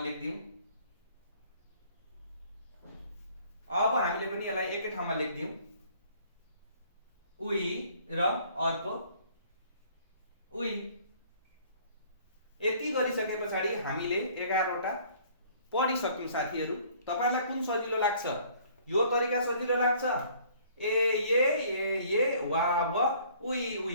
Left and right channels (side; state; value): both; inverted; correlation -0.56